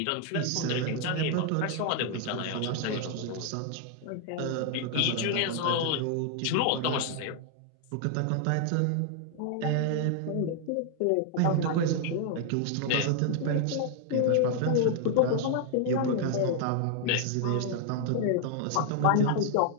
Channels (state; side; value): different; both; correlation 0.00